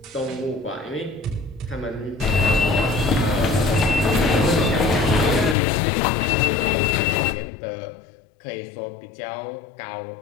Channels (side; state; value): right; drops out; at 5.6 s